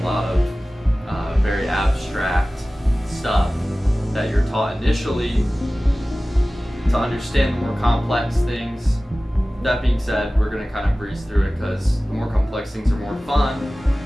lot of very abstract stuff that you're taught initially to understand the more complex things. That being said, we're going to kind of breeze through it because the more complex things are more fun.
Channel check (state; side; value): normal; both; correlation 0.97